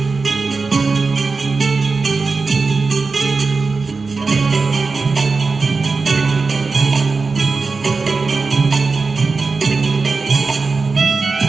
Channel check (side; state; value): left; quieter; 4.3 dB